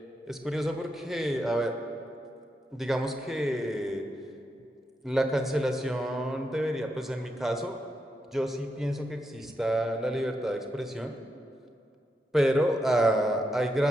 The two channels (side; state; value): both; normal; correlation 0.83